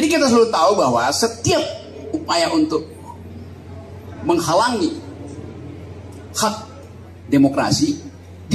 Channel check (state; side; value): identical; both; correlation 1.00